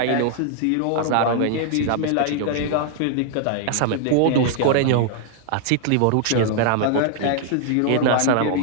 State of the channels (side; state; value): both; different; correlation -0.01